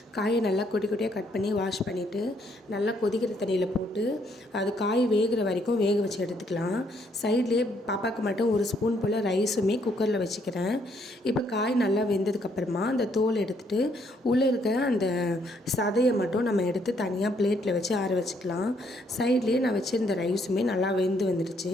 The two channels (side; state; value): both; normal; correlation 0.70